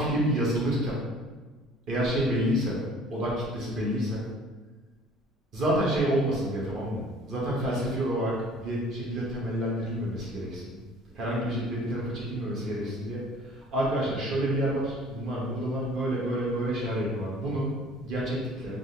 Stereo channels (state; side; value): normal; both; correlation 0.51